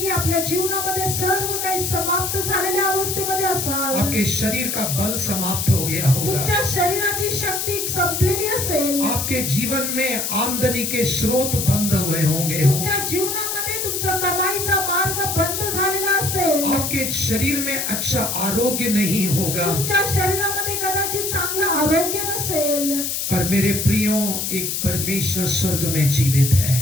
आपल्या जीवनामध्ये सर्व काही समाप्त झालेल्या अवस्थेमध्ये असाल। आपके शरीर का बल समाप्त हो गया होगा। तुमच्या शरीराची शक्ती संपलेली असेल। आपके जीवन में आमदनी के स्रोत बंद हुए होंगे। तुमच्या जीवनामध्ये तुमचा कमाईचा मार्ग बंद झालेला असेल। आपके शरीर में अच्छा आरोग्य नहीं होगा। तुमच्या शरीरामध्ये कदाचित चांगलं आरोग्य नसेल। पर मेरे प्रियो एक परमेश्वर स्वर्ग में जीवित है।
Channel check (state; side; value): noise; left; hiss, 2 dB below the sound